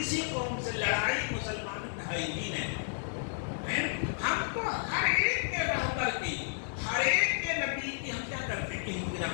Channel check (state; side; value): silent; right; digital silence